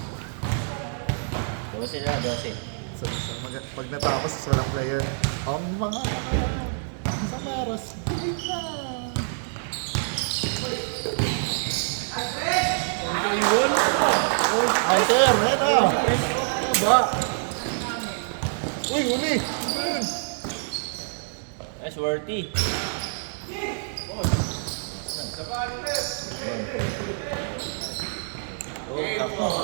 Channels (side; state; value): left; silent; digital silence